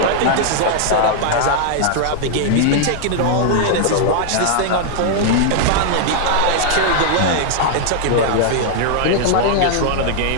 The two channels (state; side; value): different; both; correlation 0.00